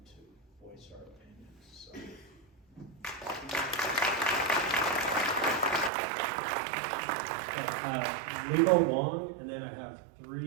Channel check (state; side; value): drops out; left; at 5.9 s